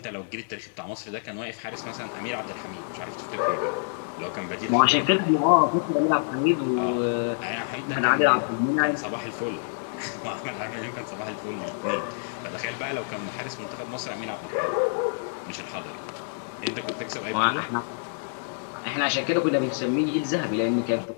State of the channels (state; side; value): silent; right; digital silence